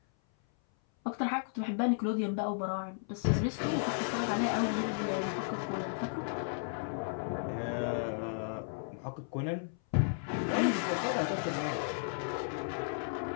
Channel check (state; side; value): silent; right; 55 dB below the other